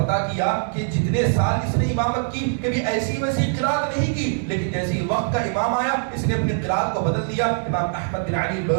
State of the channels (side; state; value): left; silent; digital silence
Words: کیا کہ جتنے سال اس نے امامت کی کبھی ایسی ویسی قرات نہیں کی، لیکن جیسے ہی وقت کا امام آیا اس نے اپنی قرات کو بدل دیا. امام احمد بن علی